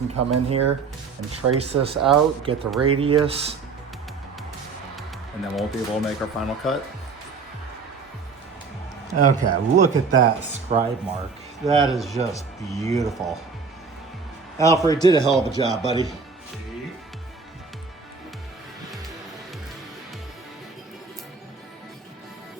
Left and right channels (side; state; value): left; quieter; 5.0 dB